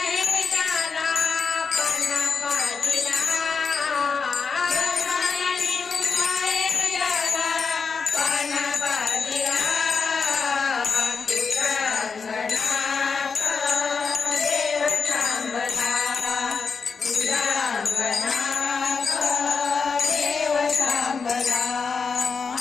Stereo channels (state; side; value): quieter; right; 5.3 dB